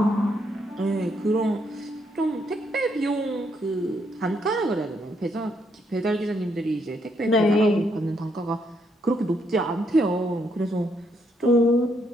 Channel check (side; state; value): both; normal; correlation 0.75